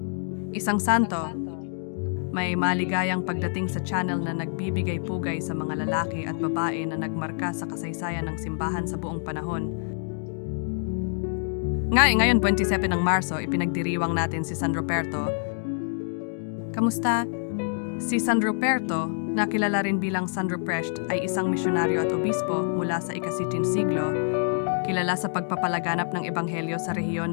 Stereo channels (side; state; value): right; silent; digital silence